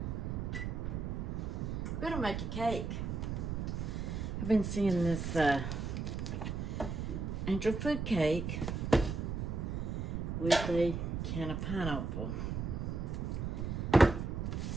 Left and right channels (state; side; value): noise; right; rumble, 3 dB below the sound